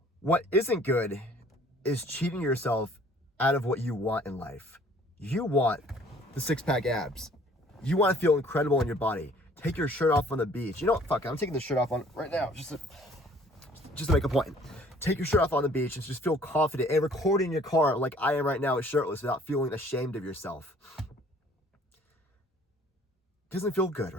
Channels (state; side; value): normal; both; correlation 0.56